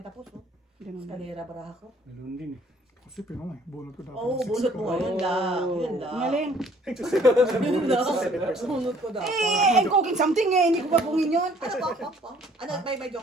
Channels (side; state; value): both; normal; correlation 0.59